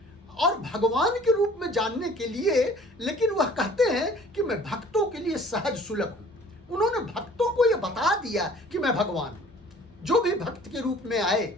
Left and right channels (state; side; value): normal; both; correlation 0.51